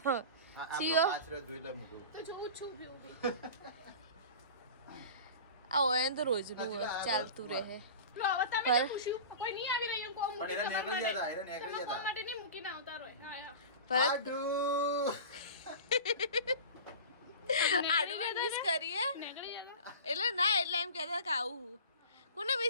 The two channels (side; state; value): both; inverted; correlation -0.35